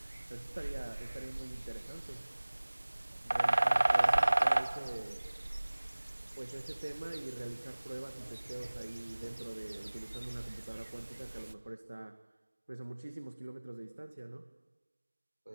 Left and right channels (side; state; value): both; inverted; correlation -1.00